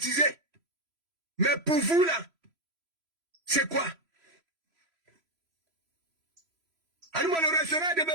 Mais pour vous, là, c'est quoi? Alors, le restaurant est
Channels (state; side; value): late; left; 3.0 ms